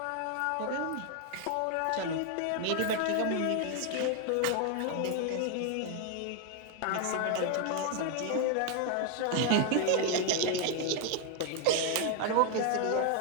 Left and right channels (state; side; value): different; both; correlation 0.00